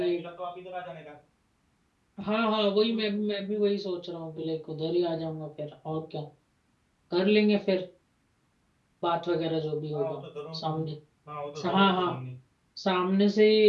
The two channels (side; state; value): both; identical; correlation 1.00